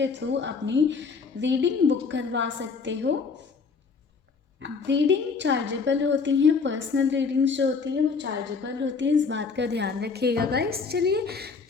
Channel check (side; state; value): right; quieter; 5.0 dB